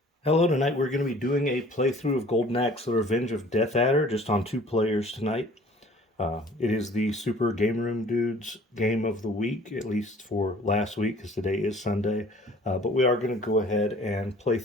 Hello, tonight we're going to be doing a playthrough of Goldenaxe, The Revenge of Death Adder, just on 2 players tonight. It is the Super Game Room Dudes game of the week, at least for last week, because today is Sunday. But we are going to go ahead and play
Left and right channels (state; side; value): normal; both; correlation 0.50